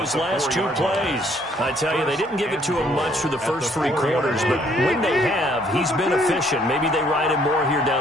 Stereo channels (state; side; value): normal; both; correlation 0.65